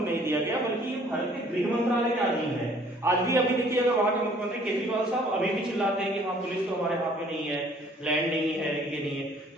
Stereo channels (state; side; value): normal; both; correlation 0.57